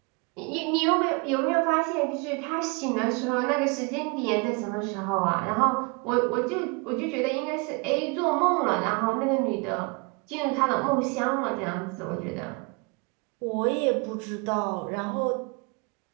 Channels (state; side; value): quieter; left; 30.4 dB